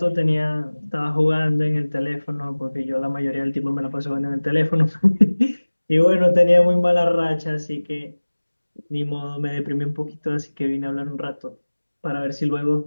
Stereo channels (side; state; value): both; inverted; correlation -1.00